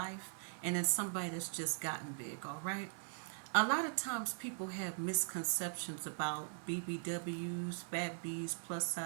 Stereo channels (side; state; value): left; silent; 51 dB below the other